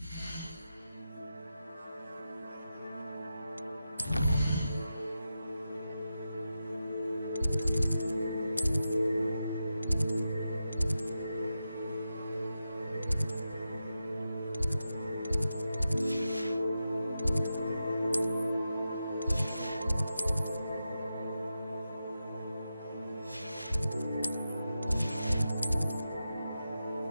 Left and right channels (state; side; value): inverted; both; correlation -0.90